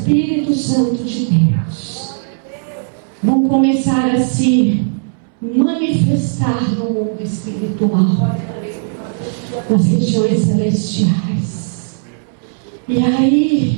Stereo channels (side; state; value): left; silent; 67 dB below the other